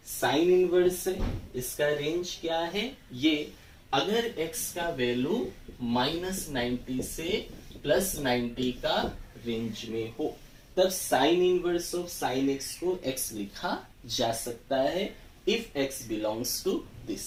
साइन इनवर्स है, इसका रेंज क्या है ये. अगर एक्स का वैल्यू -90 से +90 का रेंज में हो तब sine inverse of sine x को एक्स लिखा जा सकता है if x belongs to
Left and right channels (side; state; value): both; identical; correlation 1.00